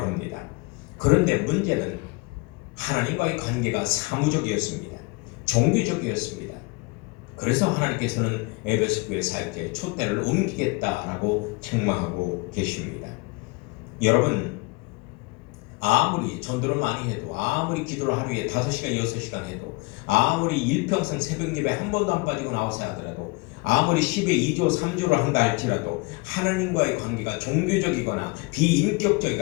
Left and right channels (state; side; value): quieter; right; 26.6 dB